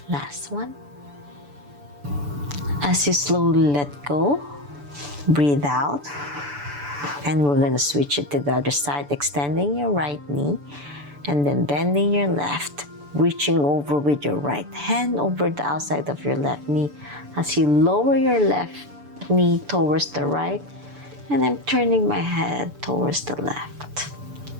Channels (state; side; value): late; left; 6.9 ms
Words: Last one. As you slowly let go, breathe out. And we're gonna switch it to the other side, extending your right knee and then bending your left, reaching over with your right hand over the outside of your left knee as you lower your left knee towards the right, and I'm turning my head towards the left